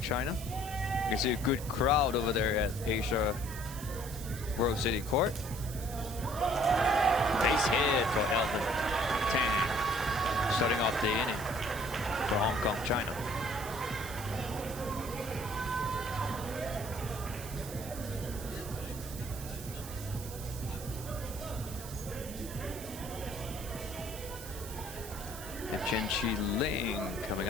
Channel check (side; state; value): right; noise; hiss, 12 dB below the sound